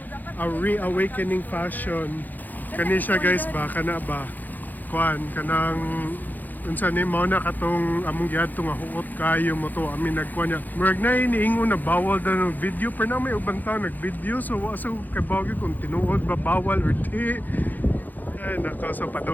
reawakening fashion. Kani siya guys ba? Kana ba? Kuan, kanang unsa ni mao na katong among giadto nga huot kayo mo to amin nagkuan niya murag na iniingon na bawal daw ng video pero na may ubang tao nag-video so wa sa kabawgi kung tinuod ba bawal or di. Ay nako, so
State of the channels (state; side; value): late; right; 0.085 ms